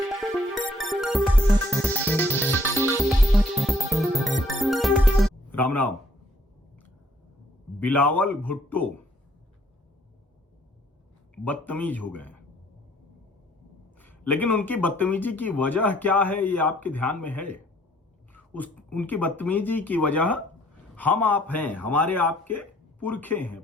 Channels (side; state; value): both; normal; correlation 0.64